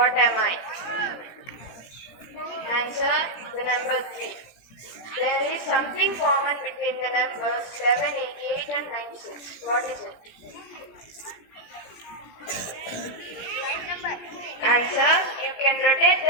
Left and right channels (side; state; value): right; late; 17 ms